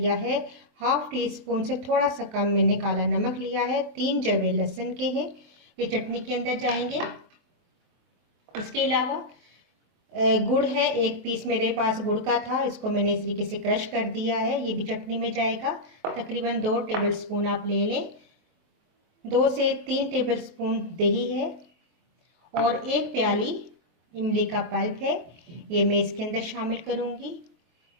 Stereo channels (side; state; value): left; late; 24 ms